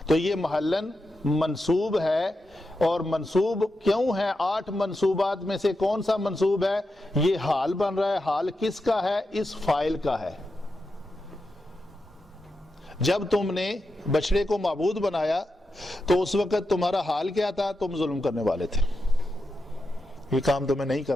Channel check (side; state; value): both; normal; correlation 0.88